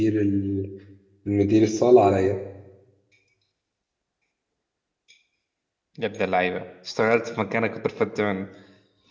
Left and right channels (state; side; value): identical; both; correlation 1.00